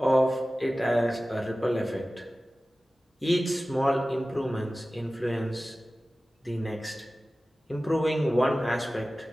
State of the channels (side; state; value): both; normal; correlation 0.96